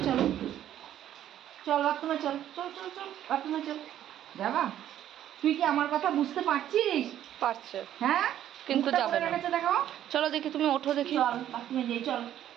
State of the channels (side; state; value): left; quieter; 11.4 dB